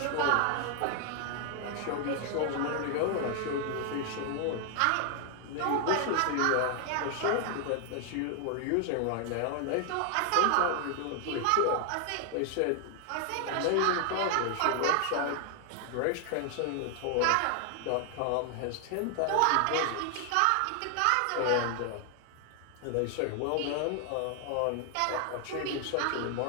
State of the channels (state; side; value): different; both; correlation 0.00